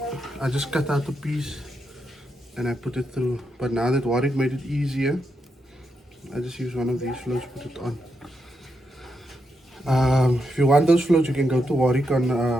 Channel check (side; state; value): both; normal; correlation 0.83